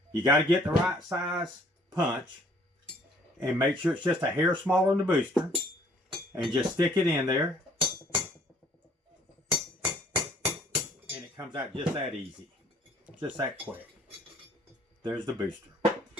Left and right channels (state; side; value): normal; both; correlation 0.59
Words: You got to get the right size punch and make sure it's just a hair smaller than the booster, and just stick it in there, and it comes out just that easy, just that quick. There's the booster.